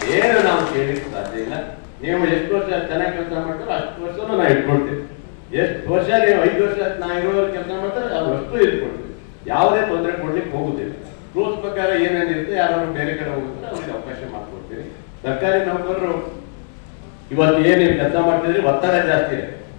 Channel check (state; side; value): silent; right; 66 dB below the other